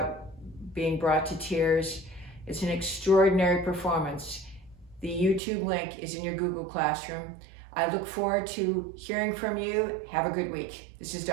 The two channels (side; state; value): left; drops out; at 5.4 s